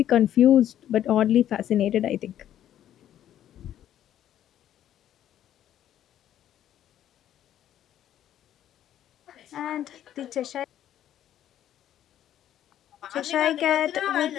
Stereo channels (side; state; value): right; quieter; 11.3 dB